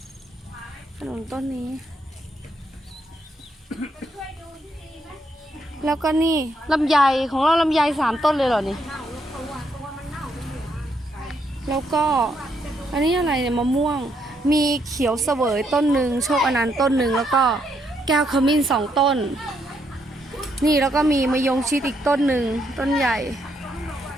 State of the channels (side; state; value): both; normal; correlation 0.76